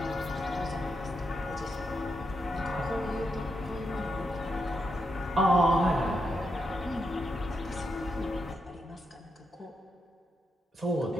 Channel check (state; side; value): normal; both; correlation 0.83